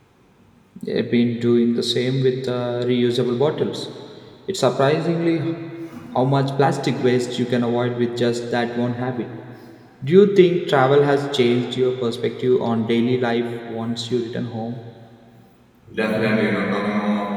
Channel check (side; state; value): both; identical; correlation 1.00